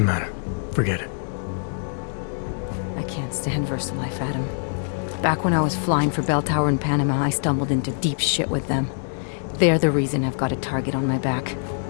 matter. Forget it. I can't stand VersaLife, Adam. Back when I was flying for Bell Tower in Panama, I stumbled into deep shit with them. They're the reason I've got a target on my back.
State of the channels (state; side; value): silent; right; digital silence